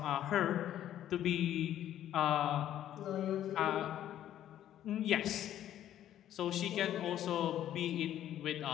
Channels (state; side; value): quieter; right; 11.6 dB